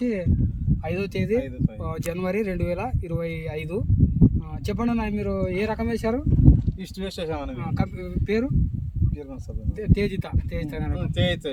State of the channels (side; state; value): both; identical; correlation 1.00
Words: 5వ తేదీ జనవరి 2025. చెప్పండి అన్న, మీరు ఏ రకం వేశారు? ఈస్ట్ వెస్ట్ వేసామని. పేరు తేజిత.